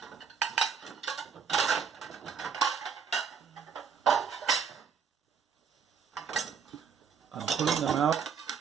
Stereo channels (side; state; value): left; quieter; 6.7 dB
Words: I'm pulling them out,